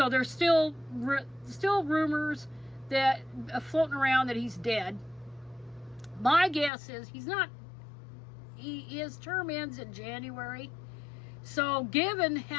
there's still rumors that floating around that he's dead. My guess is he's not. His term ends in January. So given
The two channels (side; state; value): right; drops out; at 6.7 s